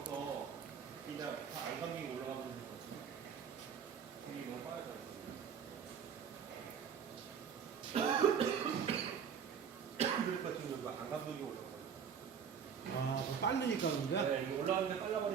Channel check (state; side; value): quieter; left; 7.2 dB